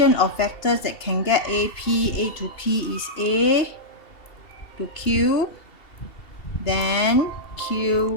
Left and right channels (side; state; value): right; late; 2.7 ms